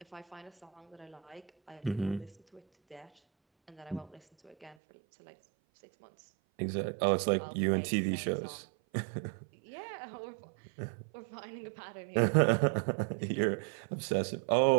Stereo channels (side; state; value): left; drops out; at 4.8 s